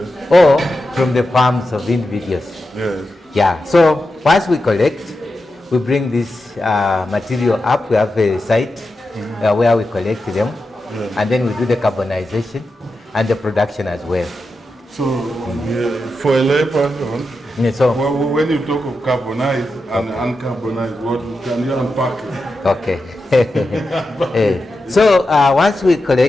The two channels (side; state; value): both; normal; correlation 0.89